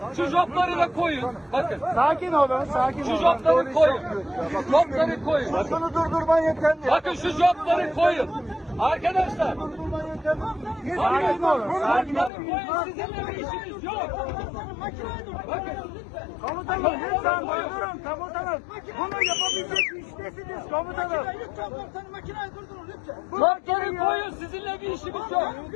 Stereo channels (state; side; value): drops out; right; at 12.3 s